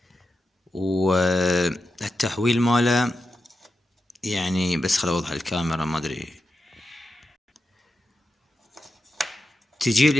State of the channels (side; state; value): both; normal; correlation 0.89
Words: والتحويل ماله، يعني بس خل اوضح الكاميرا، ما ادري، تجي